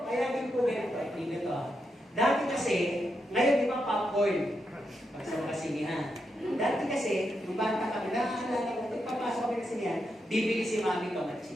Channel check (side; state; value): both; normal; correlation 0.84